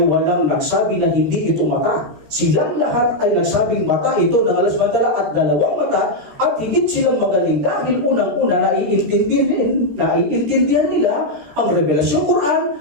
walang nagsabi na hindi ito mata. Silang lahat ay nagsabing mata ito ng Allah subhanahu wa ta'ala at dalawang mata at higit silang magaling dahil unang-una naiintindihan nila ang revelasyon Quran,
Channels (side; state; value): left; late; 14 ms